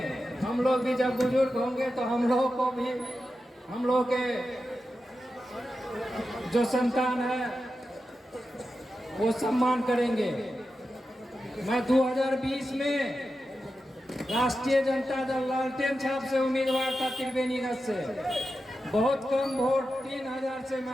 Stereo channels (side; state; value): both; normal; correlation 0.91